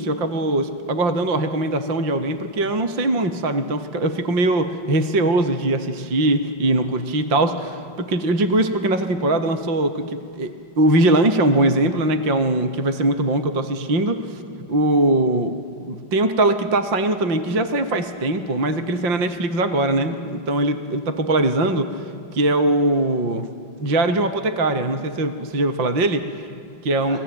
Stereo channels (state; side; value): late; left; 5.7 ms